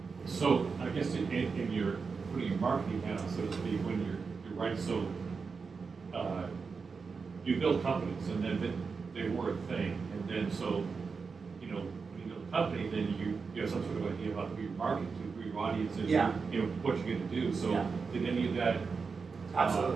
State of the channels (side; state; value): left; quieter; 5.0 dB